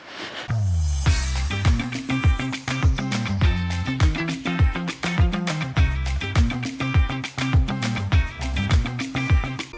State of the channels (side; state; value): both; identical; correlation 1.00